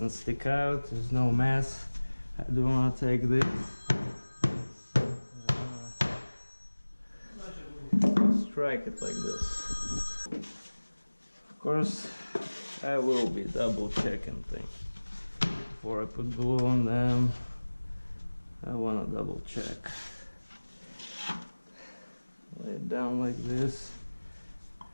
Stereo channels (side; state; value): both; inverted; correlation -1.00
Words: stick out, there's no mess. I do want to take this, strike it like this. Of course, I will be double checking things before I put glue on them. I want to double check. Lay it down like this,